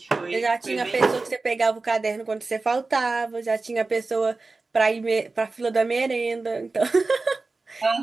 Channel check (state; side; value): quieter; left; 3.7 dB